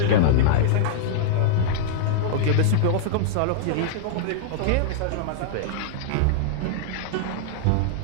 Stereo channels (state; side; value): different; both; correlation -0.01